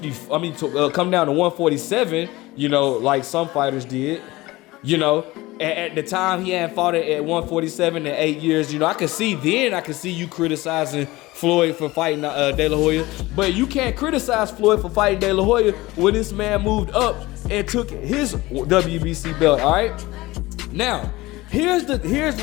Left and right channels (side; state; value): right; quieter; 19.8 dB